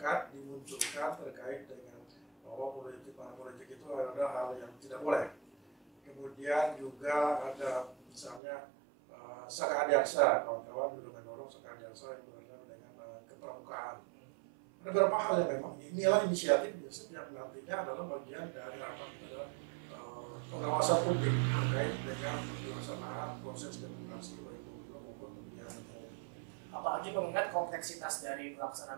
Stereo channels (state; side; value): drops out; left; at 8.4 s